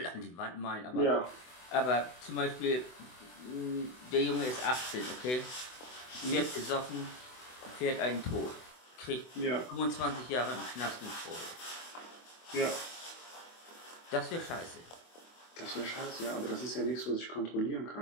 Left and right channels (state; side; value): late; right; 24 ms